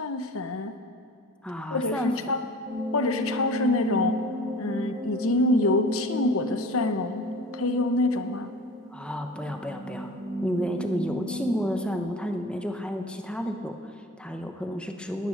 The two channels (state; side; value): normal; both; correlation 0.40